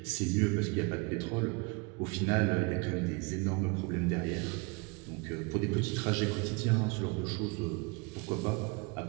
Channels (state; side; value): quieter; left; 29.4 dB